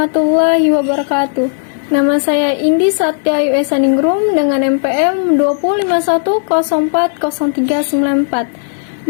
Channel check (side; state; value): right; silent; digital silence